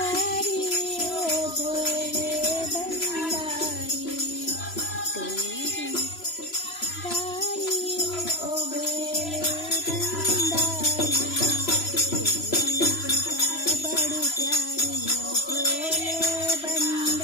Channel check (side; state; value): right; late; 3.0 ms